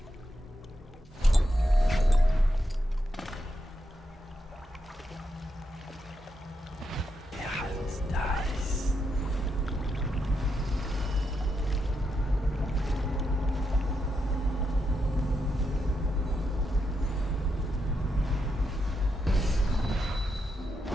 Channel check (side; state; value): both; normal; correlation 0.83